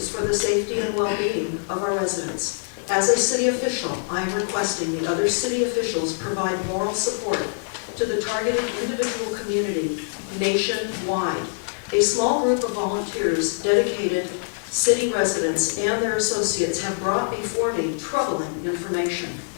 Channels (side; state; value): right; silent; 63 dB below the other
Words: for the safety and well-being of our residents. As a city official, I am requesting the other city officials provide moral support to the targeted individual community nationwide. A small group of volunteers, dedicated city residents, and their associates have brought before me troubling information.